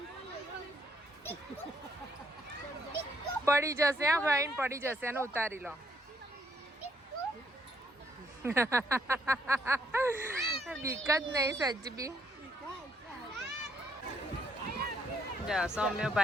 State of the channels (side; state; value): both; normal; correlation 0.70